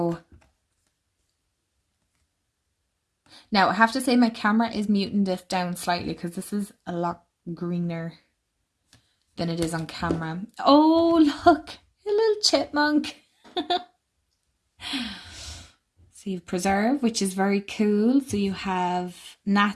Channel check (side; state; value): both; identical; correlation 1.00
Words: now I have to say my camera is muting this down slightly because this is a lot greener than it is on camera. Oh, look, a little chipmunk. So you have preserve, which is very cool. So you have